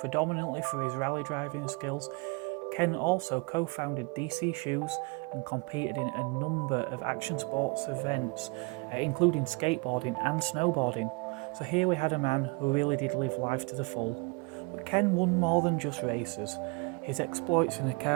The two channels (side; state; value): left; quieter; 29.4 dB